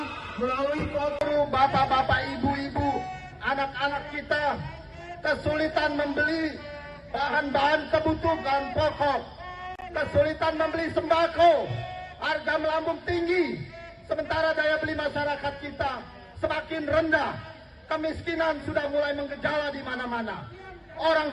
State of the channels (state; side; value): identical; both; correlation 1.00